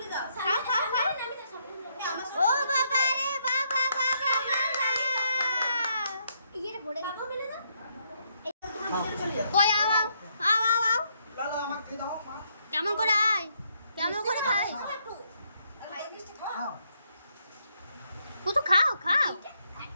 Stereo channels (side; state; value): both; inverted; correlation -0.74